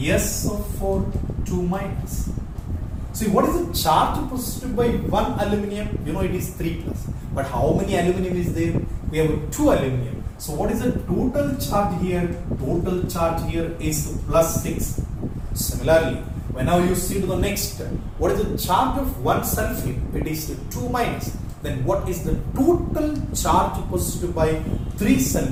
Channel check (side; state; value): both; identical; correlation 1.00